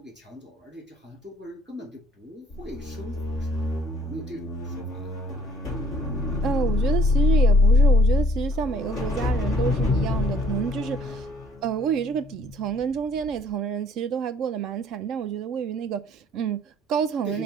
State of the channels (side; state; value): both; normal; correlation 0.59